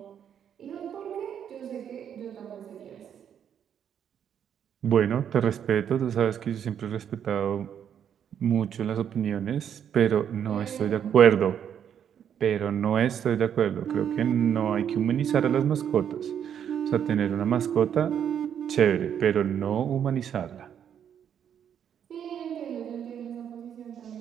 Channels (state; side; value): quieter; left; 8.8 dB